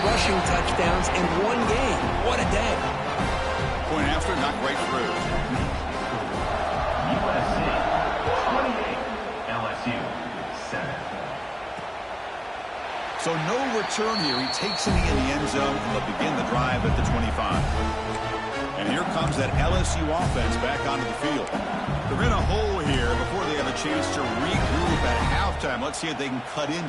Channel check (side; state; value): both; identical; correlation 1.00